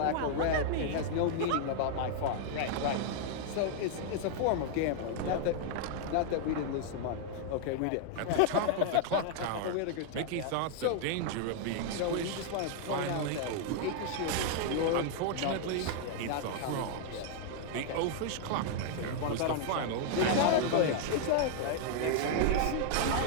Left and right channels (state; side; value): different; both; correlation 0.00